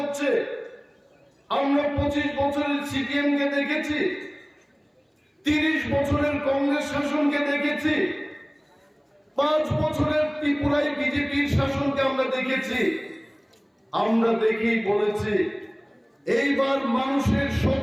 আমরা 25 বছরের সিপিএম কে দেখেছি, 30 বছরের কংগ্রেস শাসনকে দেখেছি, 5 বছরের ত্রিপুরায় বিজেপির শাসনকে আমরা দেখেছি। আমরা দেখেই বলেছি এইবার মানুষের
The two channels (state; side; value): identical; both; correlation 1.00